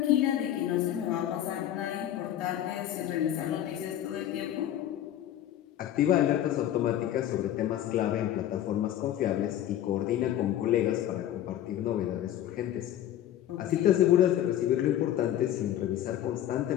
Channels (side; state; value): right; quieter; 11.8 dB